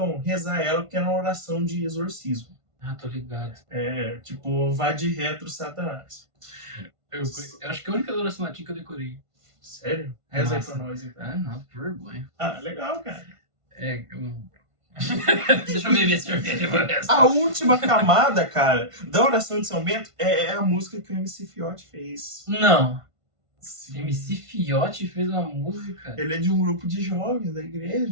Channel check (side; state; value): left; late; 1.5 ms